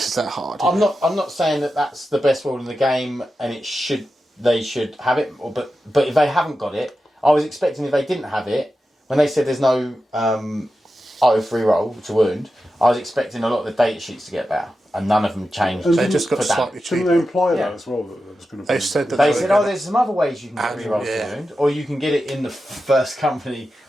that hard. I'm not saying that that's the best rule in the game, and they should have it. But if they haven't got it, I was expecting if they didn't have it, when they said there's no oath reroll to wound, I was expecting a lot of the data sheets to get better, and none of them changed. They just got for that. slightly Didn't cheaper. they imply Yeah. that as well? That there was going to be. They said that They were said, gonna- there's some other ways you can get rerolls to wound, or you can get it in the first company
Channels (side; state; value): both; normal; correlation 0.91